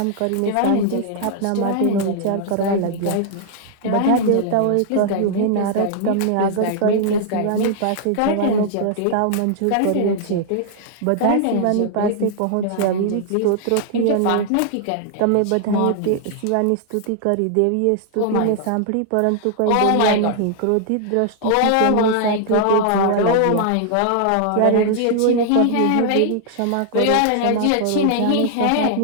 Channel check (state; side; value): different; both; correlation -0.01